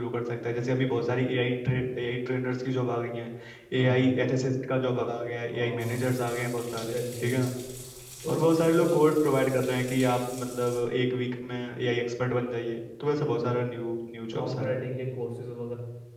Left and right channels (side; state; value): both; identical; correlation 1.00